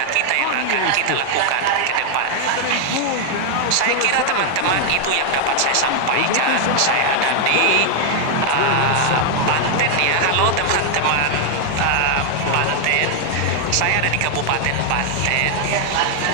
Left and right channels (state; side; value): different; both; correlation 0.00